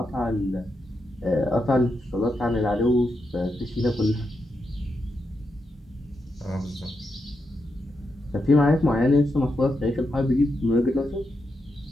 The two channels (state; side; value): normal; both; correlation 0.84